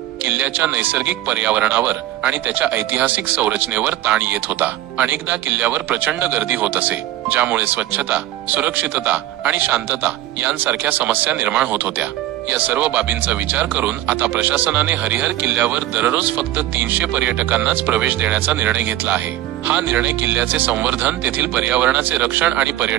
किल्ल्याच्या नैसर्गिक पर्यावरणावर आणि त्याच्या ऐतिहासिक संरचनेवर ताण येत होता। अनेकदा किल्ल्यावर प्रचंड गर्दी होत असे, ज्यामुळे स्वच्छता, सुरक्षितता आणि शांतता यांसारख्या समस्या निर्माण होत होत्या। या सर्व बाबींचा विचार करून आता प्रशासनाने हरिहर किल्ल्यावर दररोज फक्त 300 पर्यटकांनाच प्रवेश देण्याचा निर्णय घेतला आहे। हा निर्णय किल्ल्याचे संवर्धन, तेथील पर्यावरणाचे रक्षण आणि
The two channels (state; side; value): quieter; left; 13.9 dB